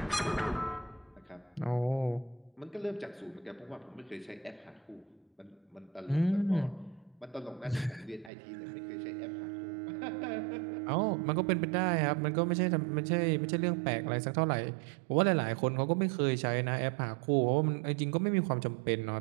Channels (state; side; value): drops out; left; at 8.3 s